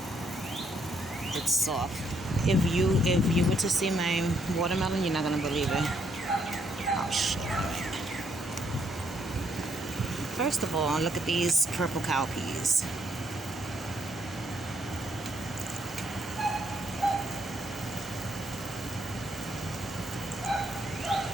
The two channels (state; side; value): normal; both; correlation 0.72